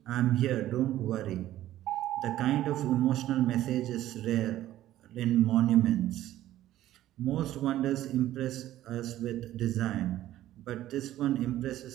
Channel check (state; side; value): quieter; left; 13.8 dB